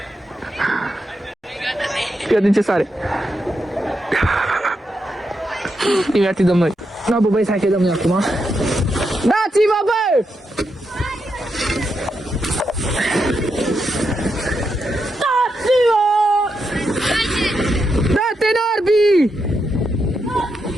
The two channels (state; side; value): normal; both; correlation 0.84